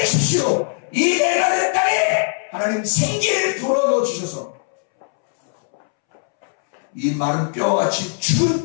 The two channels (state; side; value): silent; right; 66 dB below the other